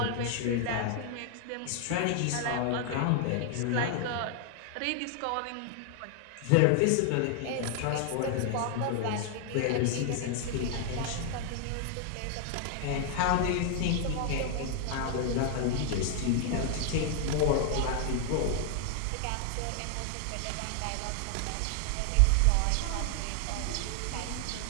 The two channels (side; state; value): both; different; correlation 0.00